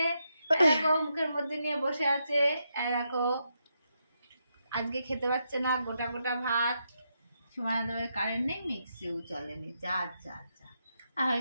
এরকম মুখের মধ্যে নিয়ে বসে আছে, এরকম আজকে খেতে পারছে না গোটা গোটা ভাত। সময় কারেন্ট নেই, মিক্সিও চলেনি, যা যা যা হয়ে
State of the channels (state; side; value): inverted; both; correlation -0.82